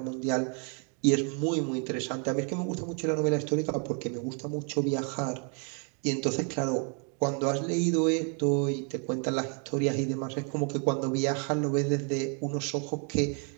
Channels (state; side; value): quieter; left; 39.0 dB